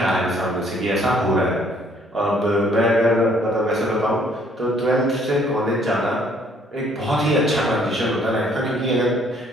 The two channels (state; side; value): normal; both; correlation 0.62